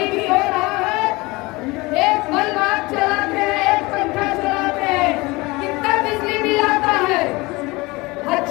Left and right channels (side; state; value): right; quieter; 23.0 dB